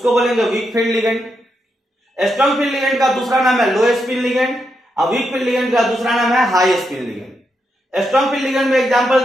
बोलेंगे week field ligand. Strong field ligand का दूसरा नाम है लो स्पिन लिगेंड और वीक फील्ड लिगेंड का दूसरा नाम है high spin ligand. Strong field ligand में एग्जांपल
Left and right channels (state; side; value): normal; both; correlation 0.83